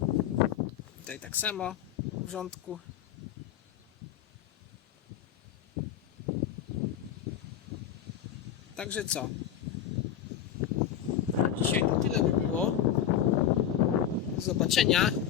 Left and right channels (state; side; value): quieter; right; 10.0 dB